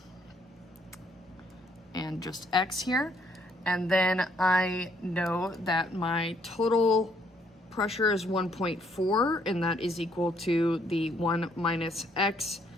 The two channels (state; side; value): normal; both; correlation 0.69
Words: and just X here. And then I know that my total pressure is 1.4, and that is equal to the 1 minus X